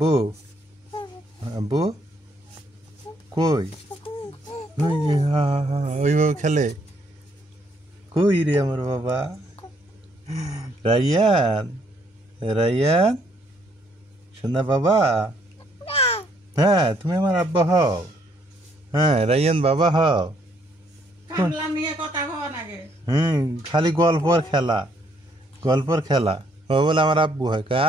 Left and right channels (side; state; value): both; normal; correlation 0.68